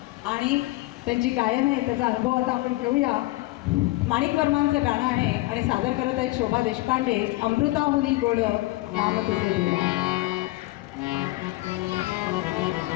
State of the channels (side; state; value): right; quieter; 20.1 dB